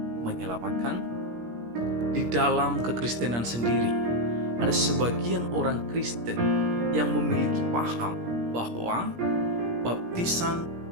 menyelamatkan? Di dalam kekristenan sendiri, ada sebagian orang Kristen yang memiliki paham bahwa baptisan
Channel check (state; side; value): late; left; 17 ms